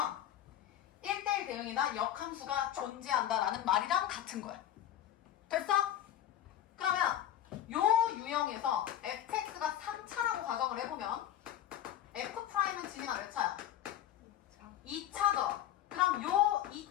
1대1 대응이나 역함수가 존재한다 라는 말이랑 같은 거야. 됐어? 그러면 요 유형에서 fx가 3차라고 가정을 해보면 f'은 지민아 몇 차야? 2차죠. 그럼 요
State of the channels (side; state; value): right; quieter; 11.4 dB